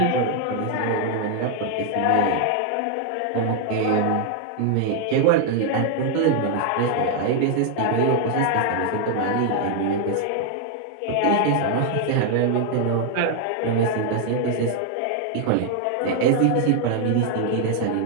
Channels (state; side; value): different; both; correlation 0.00